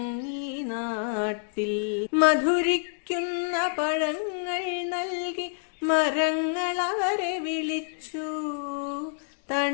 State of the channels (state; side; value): silent; right; digital silence